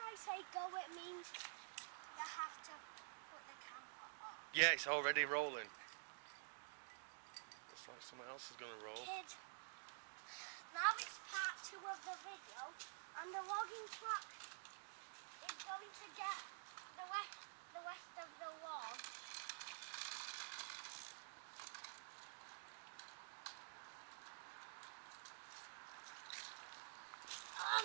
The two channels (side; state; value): left; silent; digital silence